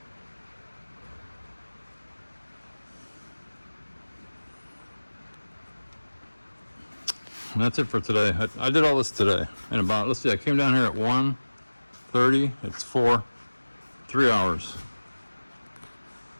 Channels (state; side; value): inverted; both; correlation -1.00